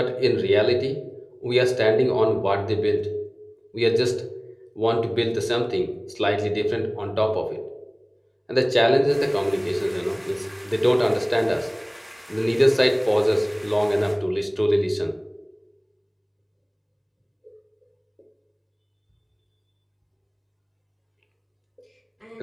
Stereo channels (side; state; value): both; identical; correlation 1.00